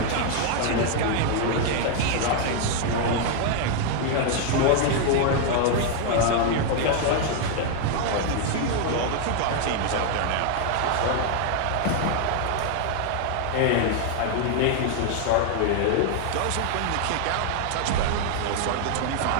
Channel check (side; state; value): both; different; correlation 0.00